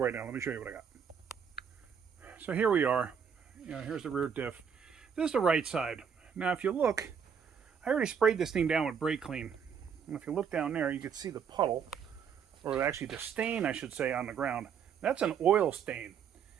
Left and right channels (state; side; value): quieter; left; 7.2 dB